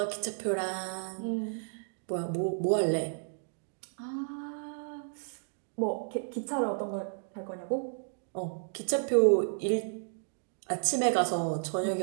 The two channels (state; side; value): silent; left; digital silence